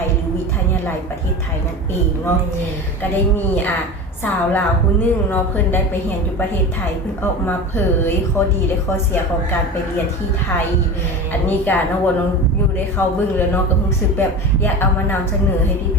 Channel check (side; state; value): both; normal; correlation 0.29